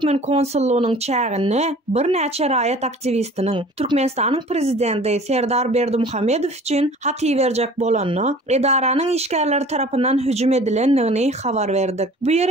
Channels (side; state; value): both; normal; correlation 0.46